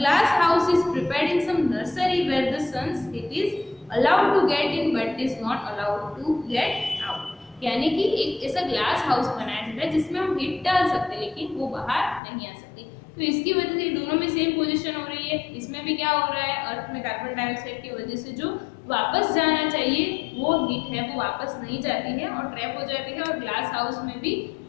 house is prepared in some nursery where the sun's heat is allowed to get in but is not allowed to get out. यानी कि एक ऐसा ग्लास हाउस बनाया जाता है जिसमें हम हीट डाल सकते हैं लेकिन वो बाहर नहीं आ सकती। तो इसकी वजह से दोनों में सेम पोजीशन हो रही है। इसमें भी क्या हो रहा है? अर्थ में कार्बन डाइऑक्साइड की वजह से जो वापस जाना चाहिए वो हीट है वो वापस नहीं जाती है और ट्रैप हो जाती है, और ग्लास हाउस में भी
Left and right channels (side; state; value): right; drops out; at 12.2 s